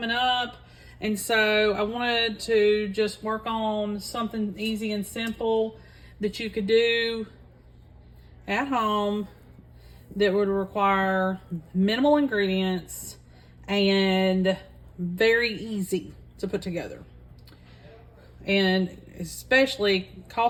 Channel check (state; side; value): identical; both; correlation 1.00